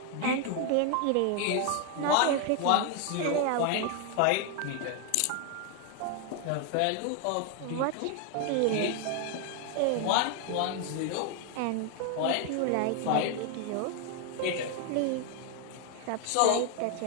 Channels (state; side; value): different; both; correlation 0.01